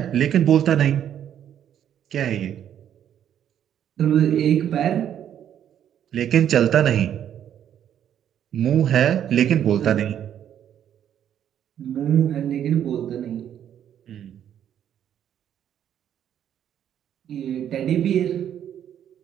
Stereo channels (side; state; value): left; quieter; 9.9 dB